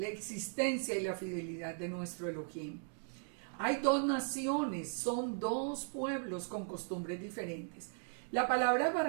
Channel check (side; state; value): left; silent; digital silence